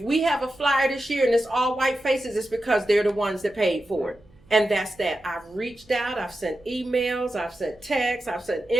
we have a flyer this year and it's all white faces, it's because they're the ones that paid for it. And that's that. I've reached out, I've sent emails, I've sent texts, I've sent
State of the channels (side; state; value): right; noise; hum, 29 dB below the sound